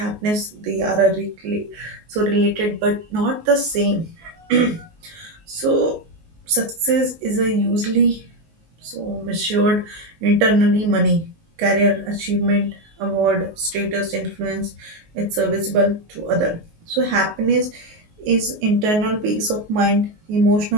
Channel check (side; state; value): left; late; 19 ms